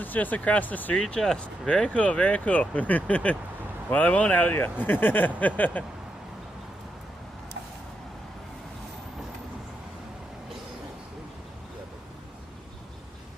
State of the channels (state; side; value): normal; both; correlation 0.83